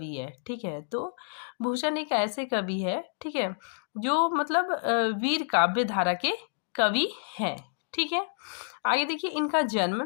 है। ठीक है, तो भूषण एक ऐसे कवि है, ठीक है, जो मतलब वीर काव्य धारा के कवि हैं। ठीक है, आगे देखिए, इनका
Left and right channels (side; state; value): right; silent; digital silence